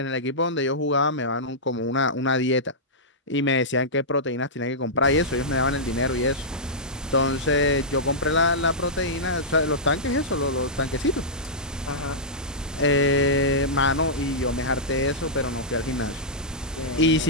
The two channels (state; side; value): normal; both; correlation -0.13